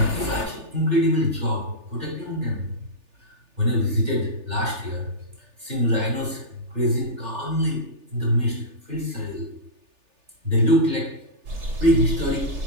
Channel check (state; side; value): late; left; 3.4 ms